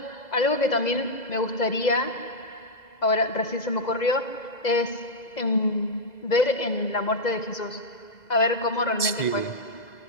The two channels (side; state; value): right; late; 2.0 ms